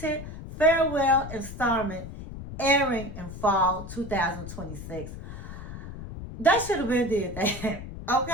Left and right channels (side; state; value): left; noise; rumble, 11 dB below the sound